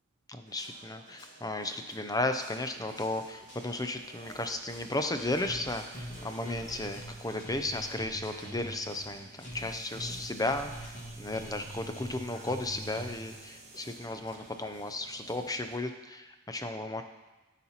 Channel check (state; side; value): normal; both; correlation 0.38